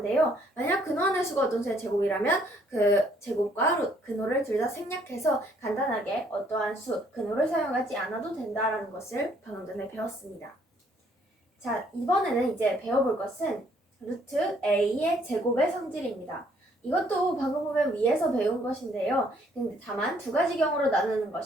만약 근호 안의 수가 어떤 수의 제곱이라면 그 제곱과 근호를 둘 다 생략해서 간단하게 어떠한 수, 근호를 사용하지 않아도 된다라는 것을 방금 전에 배웠습니다. 자, 이번에는 이제 배워볼 것은 루트 A의 제곱의 성질입니다. 이것도 방금 보면 위에서 배운 것인데요. 근데 다만 두 가지 경우로 나누는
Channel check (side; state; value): both; normal; correlation 0.65